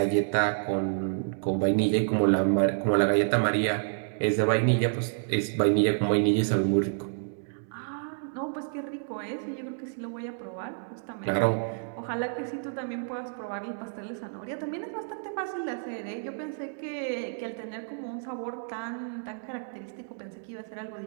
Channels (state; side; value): silent; left; digital silence